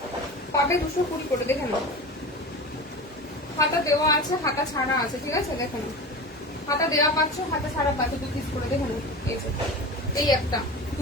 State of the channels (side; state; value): both; normal; correlation 0.30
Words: পাবে 220 করে, দেখে নাও হাতা দেওয়া আছে, হাতা ছাড়া আছে, ঠিক আছে দেখে নাও। হাতা দেওয়া পাচ্ছ, হাতা ছাড়া পাচ্ছ 2 পিস করে, দেখে নাও। এই একটা